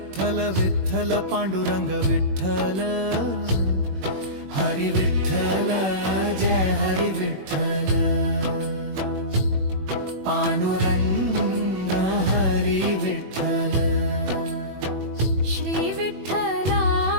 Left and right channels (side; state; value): left; late; 21 ms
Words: विठ्ठल पांडुरंग विठ्ठल। हरी विठ्ठल जय हरी विठ्ठल। पांडुरंग हरी विठ्ठल। श्री